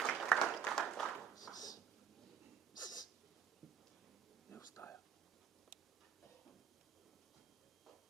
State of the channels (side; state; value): left; quieter; 7.9 dB